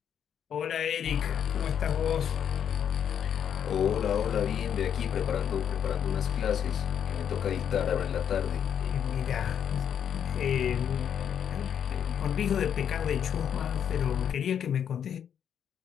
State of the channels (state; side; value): quieter; right; 8.6 dB